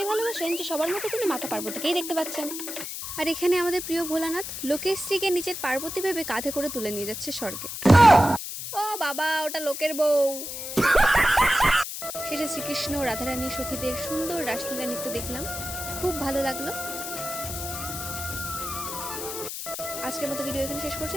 ভালোবাসেন যে সবার মধ্যে তিনি মাতা পার্বতীকেই দেখতে পাচ্ছেন। আর এখানে আমাদের প্রিয় ভোলানাথ লোকের স্ত্রীকে নিজের পার্বতী ভেবে কাঁধে করে তুলে নিয়ে যাচ্ছে স্বর্গে। ও বাবা, ওটা লোকের বউ। শেষে শ্রীকৃষ্ণ ও রাধারানী সখীদের সুন্দর রাসলীলা নৃত্য দেখলাম, খুব ভালো লাগলো। আজকের মতো ভিডিও এখানে শেষ করছি,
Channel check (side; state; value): left; noise; hiss, 7 dB below the sound